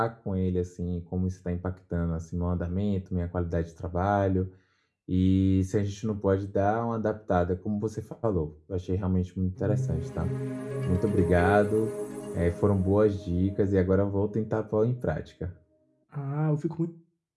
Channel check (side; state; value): both; identical; correlation 1.00